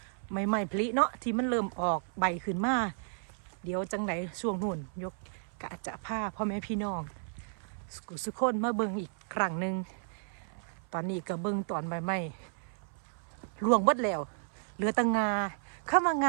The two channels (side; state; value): left; silent; 56 dB below the other